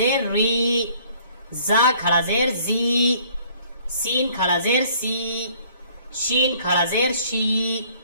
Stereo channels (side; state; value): both; inverted; correlation -0.57